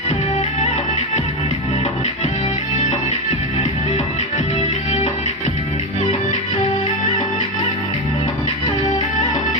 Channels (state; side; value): normal; both; correlation 0.14